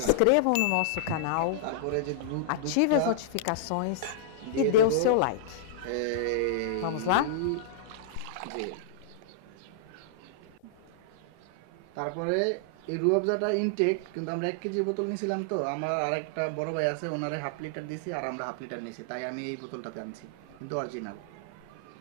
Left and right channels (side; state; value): both; different; correlation -0.01